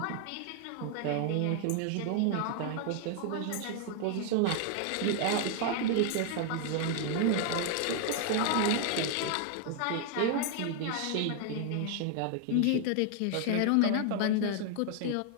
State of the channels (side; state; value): both; different; correlation 0.00